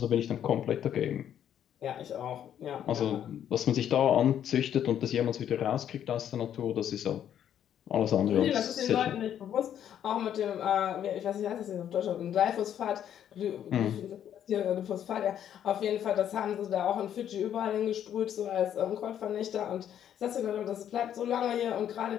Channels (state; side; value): quieter; right; 10.0 dB